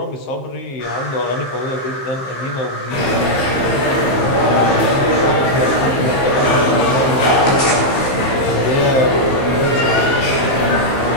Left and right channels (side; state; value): right; late; 15 ms